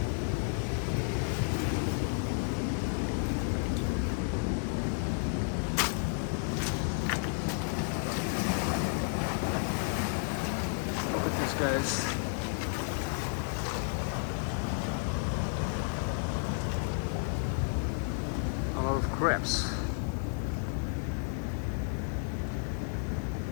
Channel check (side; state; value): right; silent; 56 dB below the other